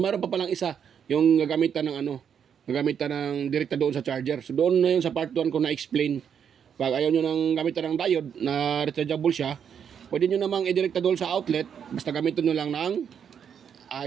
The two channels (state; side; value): quieter; left; 7.8 dB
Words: meron pa palang isa, yung gagamitan ng direkta doon sa charger. So doon na yun sa part 1 ko na explain. Pag ayaw nyo nang gamitan ng diode na rechargeable siya, pwede nyo namang i-direkta doon sa outlet, basta gamitin nyo lang ng